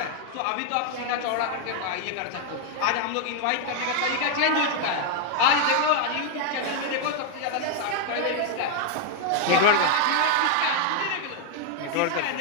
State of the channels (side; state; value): both; different; correlation 0.00